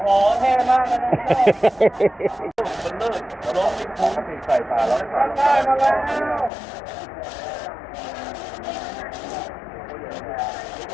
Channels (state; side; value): drops out; right; at 6.5 s